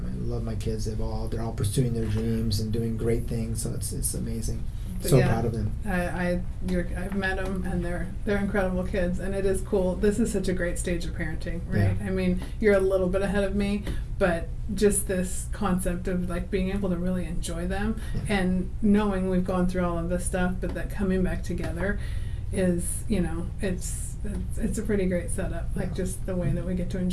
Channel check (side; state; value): both; identical; correlation 1.00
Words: love my kids. They're all pursuing their dreams and doing great things. So it's amazing. So yeah, proud of them. I've met them, and they're incredible kids, and it is cool. This is such a great stage of parenting, right? Yeah. I mean, you're a little bit ahead of me, but just this concept of like being able to really enjoy them, and knowing we've gone through all of this stuff, but that coming back together is, you know, it's a pretty great setup. Like just the way that we get to